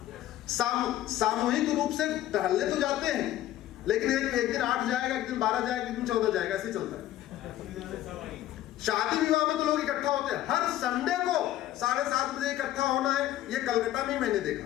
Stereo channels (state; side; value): quieter; right; 13.6 dB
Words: सामूहिक रूप से टहलने तो जाते हैं, लेकिन एक दिन 8 जाएगा, एक दिन 12 जाएगा, एक दिन 14 जाएगा, ऐसे चलता है। शादी विवाह में तो लोग इकट्ठा होते हैं। हर संडे को 7:30 बजे इकट्ठा होना है, ये कलकत्ता में मैंने देखा।